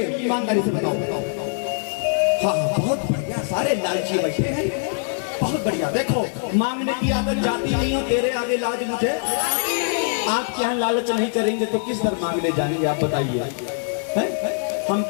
ईमानदारी से बताओ। हाँ हाँ, बहुत बढ़िया, सारे लालची बैठे हैं, बहुत बढ़िया। देखो, मांगने की आदत जाती नहीं हो, तेरे आगे लाज मुझे। आप क्या लालच नहीं करेंगे तो किस तरह मांगने जाएंगे आप बताइए। हम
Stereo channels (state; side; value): silent; right; 64 dB below the other